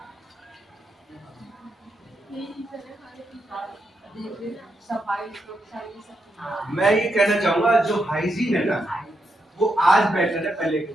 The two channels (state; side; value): normal; both; correlation 0.82